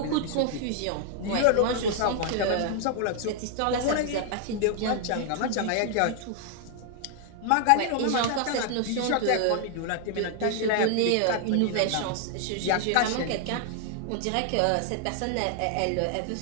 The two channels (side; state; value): both; different; correlation 0.00